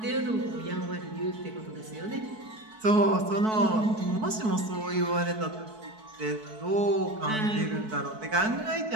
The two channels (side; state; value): left; late; 4.6 ms